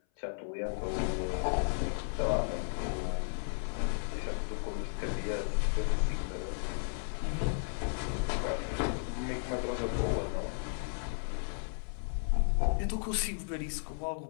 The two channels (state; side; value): silent; right; 55 dB below the other